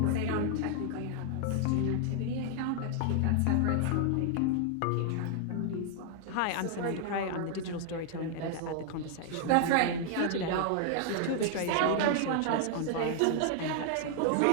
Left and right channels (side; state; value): both; different; correlation 0.00